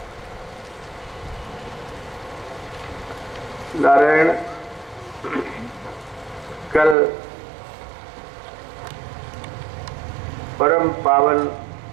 नारायण, कल परम पावन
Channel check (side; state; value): left; drops out; at 7.0 s